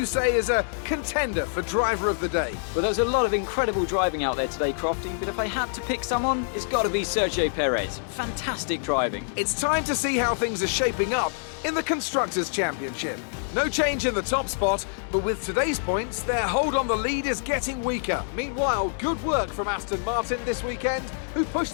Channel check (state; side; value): silent; right; digital silence